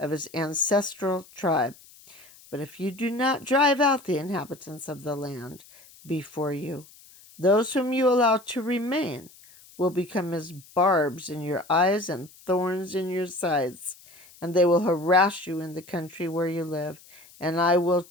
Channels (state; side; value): noise; left; hiss, 24 dB below the sound